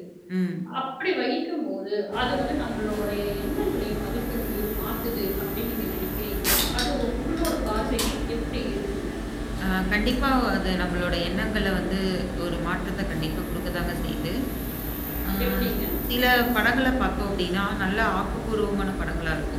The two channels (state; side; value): identical; both; correlation 1.00